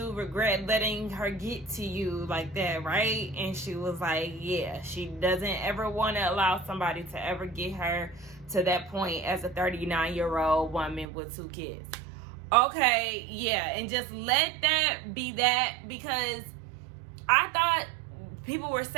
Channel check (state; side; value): drops out; left; at 11.1 s